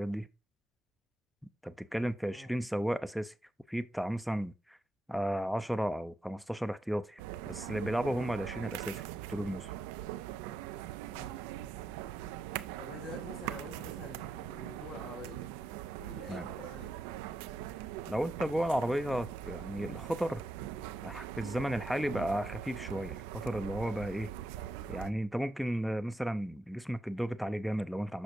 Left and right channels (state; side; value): normal; both; correlation 0.84